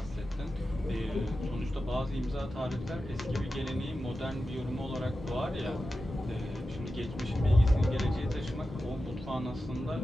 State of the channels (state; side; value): normal; both; correlation 0.92